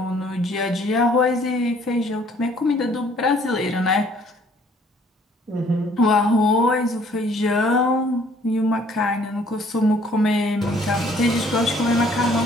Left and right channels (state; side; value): normal; both; correlation 0.60